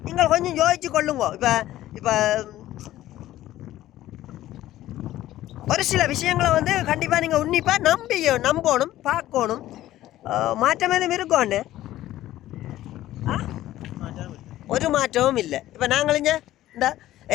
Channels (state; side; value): quieter; right; 14.4 dB